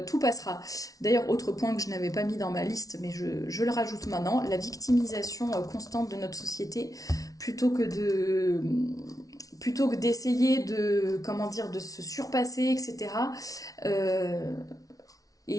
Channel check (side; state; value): right; late; 0.18 ms